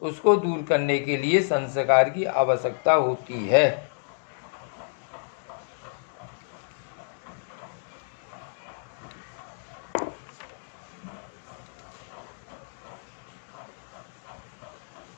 उसको दूर करने के लिए संस्कार की आवश्यकता होती है।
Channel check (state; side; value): silent; right; digital silence